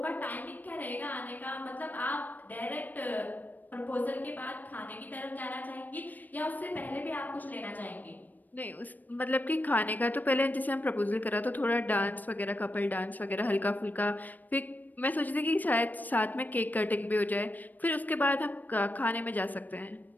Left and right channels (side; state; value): right; late; 0.084 ms